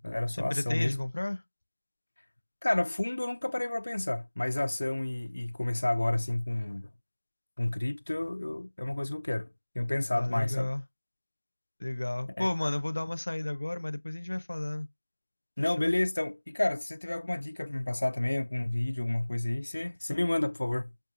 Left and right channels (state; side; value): inverted; both; correlation -1.00